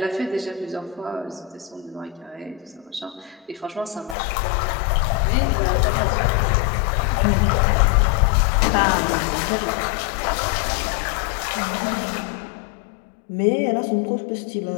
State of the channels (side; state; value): right; drops out; at 4.2 s